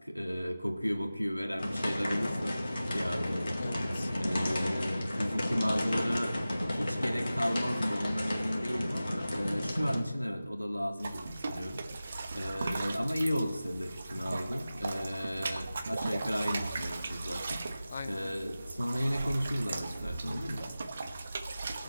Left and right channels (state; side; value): inverted; both; correlation -0.95